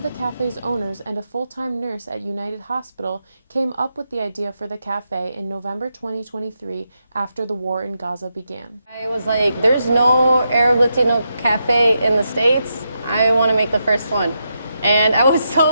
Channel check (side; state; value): both; inverted; correlation -0.84